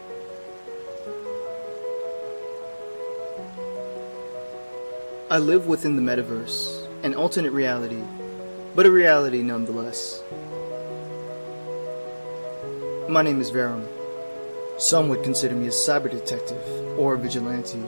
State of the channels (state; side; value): inverted; both; correlation -1.00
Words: I live within the MetaVerse, an alternate reality, but a reality nonetheless. My name is Verum. Some would consider me a cyber detective or a vigilante.